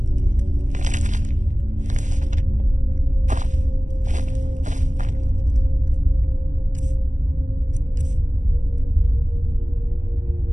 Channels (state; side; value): late; left; 0.36 ms